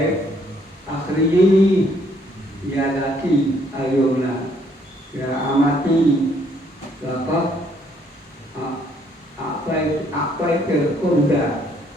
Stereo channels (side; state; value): both; normal; correlation 0.67